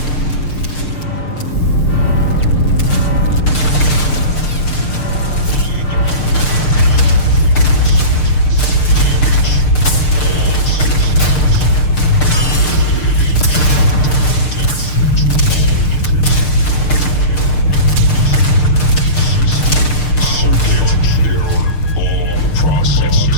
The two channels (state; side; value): late; right; 6.6 ms